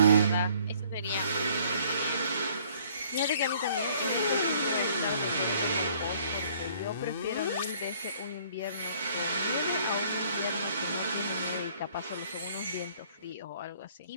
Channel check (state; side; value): inverted; both; correlation -0.59